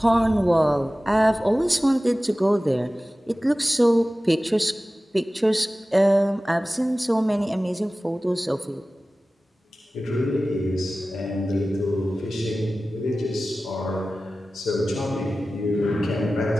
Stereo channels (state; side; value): normal; both; correlation 0.96